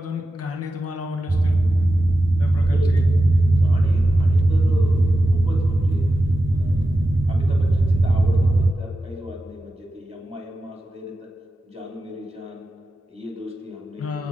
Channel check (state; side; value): normal; both; correlation 0.92